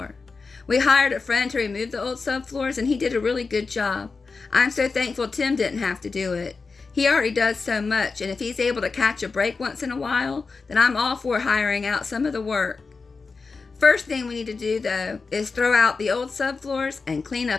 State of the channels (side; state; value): right; quieter; 4.4 dB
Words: We hired a friend to remove the old subfloors, and he did a really good job. I'm so thankful Tim didn't have to do it. He already does so much, and if he's able to catch a break once in a while, then I'm all for hiring out some of the work. First thing we need to do, though, is throw out the old subfloors and clean